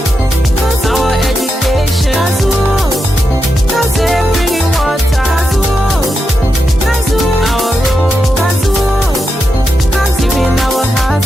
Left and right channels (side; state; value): both; normal; correlation 0.87